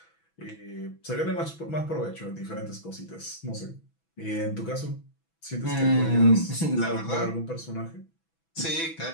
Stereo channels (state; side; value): late; right; 6.1 ms